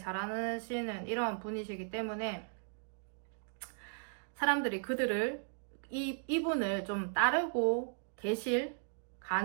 이런 분이시기 때문에 사람들이 이분을 좀 따르고 계실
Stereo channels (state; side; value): silent; left; digital silence